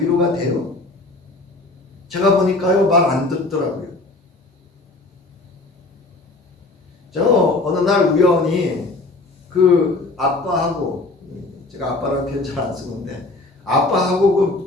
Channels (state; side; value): quieter; right; 3.1 dB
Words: 위로가 돼요? 제가 보니까요, 말 안 듣더라고요. 저 어느 날 우연히 그 아빠하고, 제가 아빠라는 표현 잘 안 쓰는데,